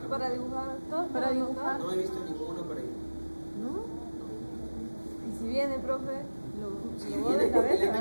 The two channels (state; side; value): inverted; both; correlation -1.00